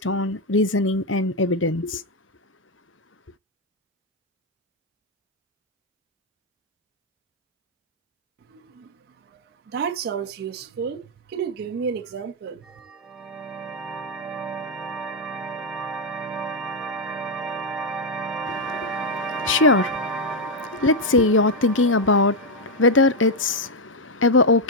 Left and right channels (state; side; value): normal; both; correlation 0.03